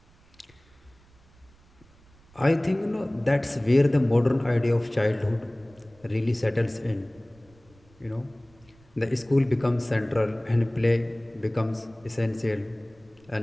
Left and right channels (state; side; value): noise; right; rumble, 29 dB below the sound